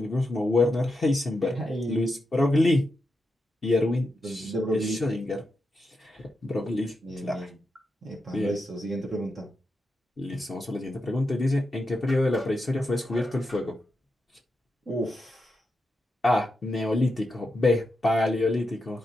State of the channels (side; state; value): both; normal; correlation 0.87